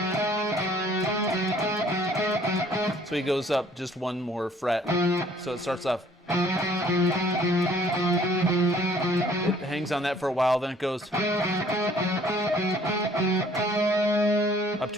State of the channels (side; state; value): both; normal; correlation 0.58